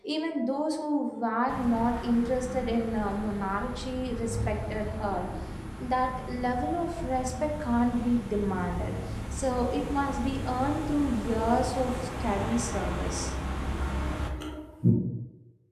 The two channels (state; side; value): identical; both; correlation 1.00